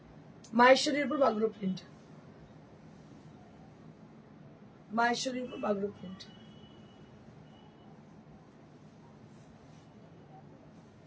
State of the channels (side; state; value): both; identical; correlation 1.00